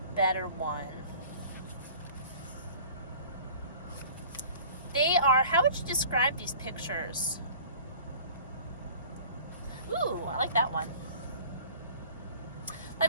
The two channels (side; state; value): both; inverted; correlation -0.46